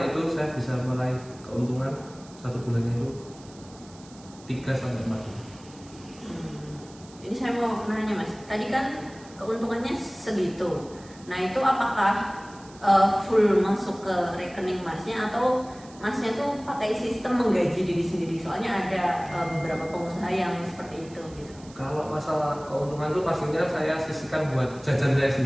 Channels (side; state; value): right; noise; hiss, 23 dB below the sound